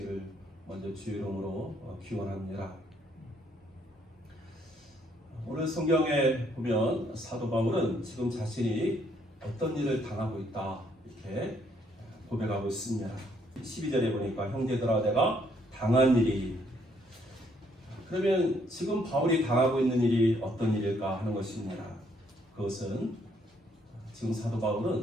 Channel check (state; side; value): normal; both; correlation 0.69